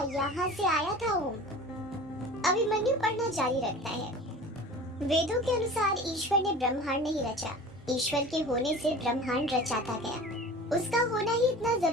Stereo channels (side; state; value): both; normal; correlation 0.39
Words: यहाँ से आया था ओम। अभिमन्यु पढ़ना जारी रखता है। वेदों के अनुसार ईश्वर ने ब्रह्मांड नहीं रचा, ईश्वर के होने से ब्रह्मांड रचाता गया। उसका होना ही इतना